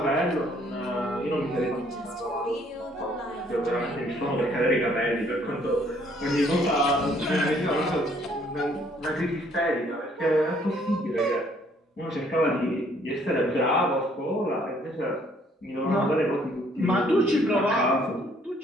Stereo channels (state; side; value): normal; both; correlation 0.64